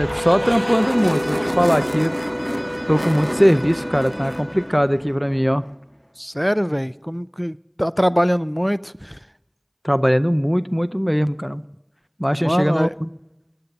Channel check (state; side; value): identical; both; correlation 1.00